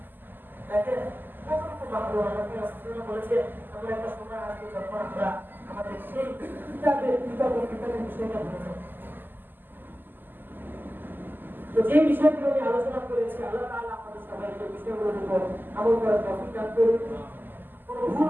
দেখেন কতটুকু মাহরুম আমাকে রাসূল বলেছে, আমরা একটা সময় আসবে যখন আমরা আমাদের সেই কিতাবের বিষয়টা ভুলে যাব। তো যে বিষয়গুলো নিয়ে আলোচনা করেছি, আল্লাহ তাআলা আমাদের সবাইকে বিষয়গুলোর উপর আমল করার তৌফিক দান করুন। কোনো ভুল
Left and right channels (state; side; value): late; left; 0.091 ms